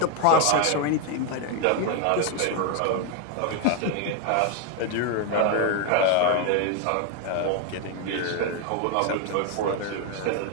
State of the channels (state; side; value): different; both; correlation 0.01